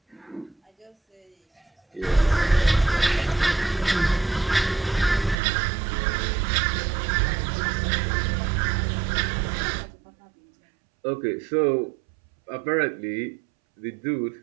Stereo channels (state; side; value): drops out; left; at 5.4 s